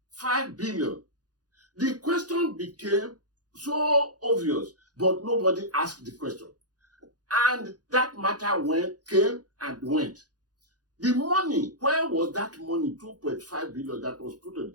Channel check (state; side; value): late; left; 0.68 ms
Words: billion. The question became so obvious, but nobody asked the question. And that matter came and went. The money, where was that money, 2.5 billion that was put on the